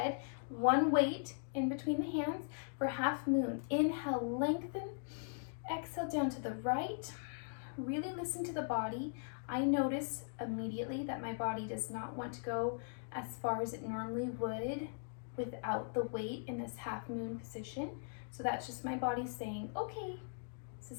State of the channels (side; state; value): right; silent; digital silence